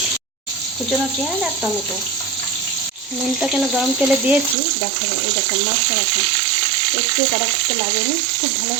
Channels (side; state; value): left; drops out; at 4.5 s